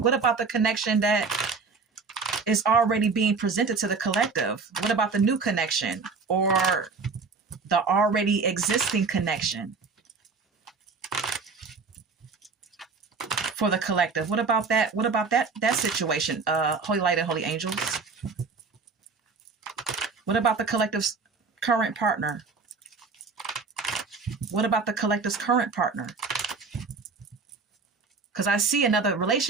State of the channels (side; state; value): left; quieter; 4.7 dB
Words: What about the connection that is already being presented to the collective? What about the new connection or the already existing connection for the collective? What about that? What about that situation? Holy light and holy angels. What about the collective's current partner? What about the collective's current partner? Because I see another